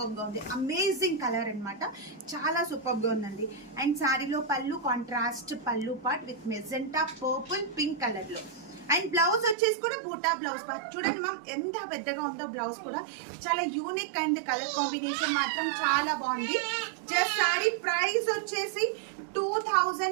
గా ఉంది, అమేజింగ్ కలర్ అనమాట, చాలా సూపర్ గా ఉందండి. అండ్ శారీలో పళ్ళు కాంట్రాస్ట్ పళ్ళు part with magenta purple pink colour లో. అండ్ బ్లౌజ్ వచ్చేసి కూడా బూటా బ్లౌజ్ చూడండి మ్యామ్, ఎంత పెద్దగా ఉందో బ్లౌజ్ కూడా, చాలా యూనిక్ అండ్ కలర్ కాంబినేషన్ మాత్రం చాలా బాగుంది. జస్ట్ శారీ ప్రైస్ వచ్చేసి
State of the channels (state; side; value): drops out; left; at 9.6 s